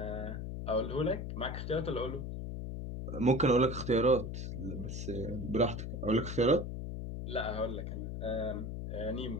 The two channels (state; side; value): noise; left; hum, 5 dB below the sound